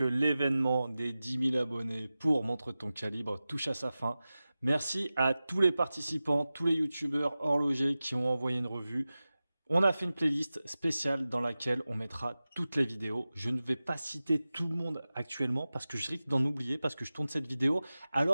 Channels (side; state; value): both; inverted; correlation -0.96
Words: l'événement des 10 000 abonnés pour Montre ton calibre touche à sa fin. Merci à tous les participants, tous les youtubeurs horlogers qui ont envoyé une revue. On a fait une playlist spéciale dans laquelle on mettra toutes les vidéos. Je ne vais pas citer tout le monde actuellement parce que je risque d'en oublier parce que je tourne cette vidéo